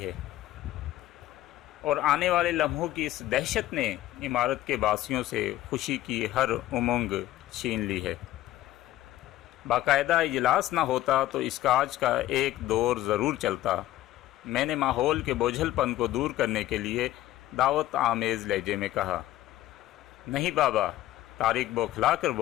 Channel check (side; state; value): right; quieter; 14.7 dB